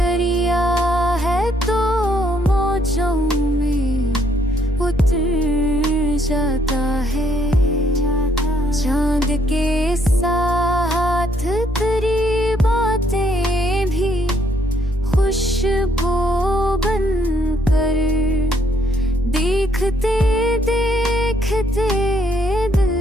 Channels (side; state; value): both; normal; correlation 0.70